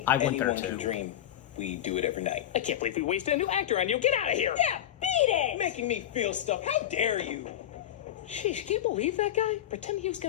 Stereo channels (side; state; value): right; quieter; 11.6 dB